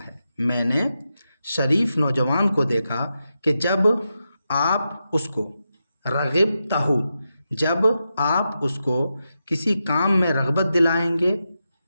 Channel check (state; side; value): inverted; both; correlation -0.88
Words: ہے۔ میں نے شریف نوجوان کو دیکھا کہ جب آپ اس کو رغبتہ، جب آپ اس کو کسی کام میں رغبت دلائیں گے،